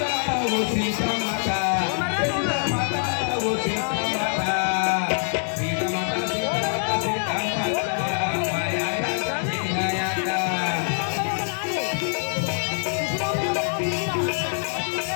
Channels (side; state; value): right; silent; digital silence